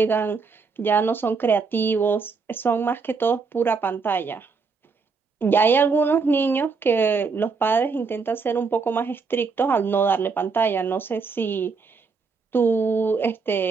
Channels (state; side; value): quieter; left; 4.9 dB